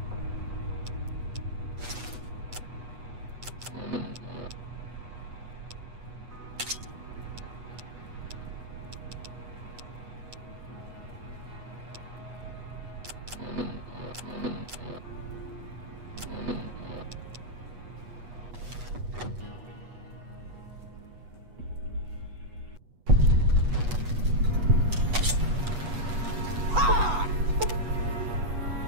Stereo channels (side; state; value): left; late; 8.2 ms